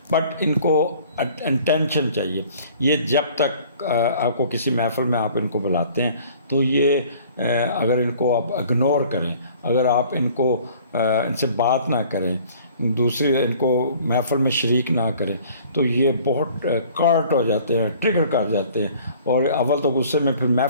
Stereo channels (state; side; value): inverted; both; correlation -0.52